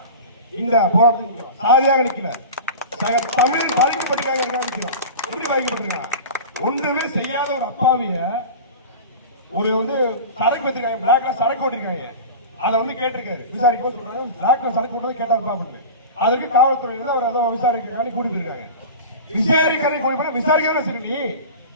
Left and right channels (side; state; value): both; inverted; correlation -0.32